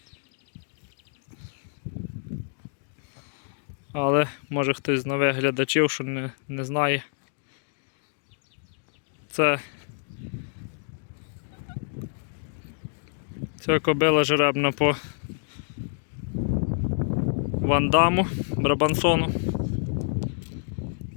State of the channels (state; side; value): silent; right; digital silence